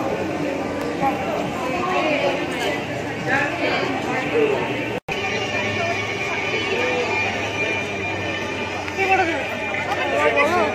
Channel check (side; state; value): both; identical; correlation 1.00